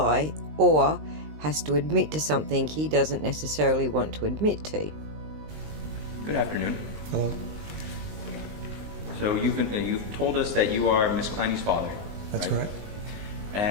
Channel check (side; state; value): left; late; 19 ms